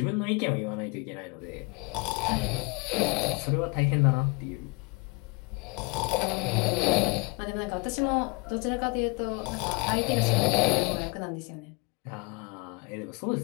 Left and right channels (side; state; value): right; quieter; 28.2 dB